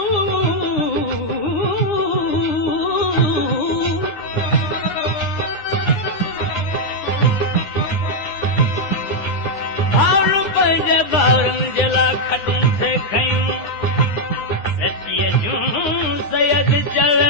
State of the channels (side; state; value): right; late; 9.6 ms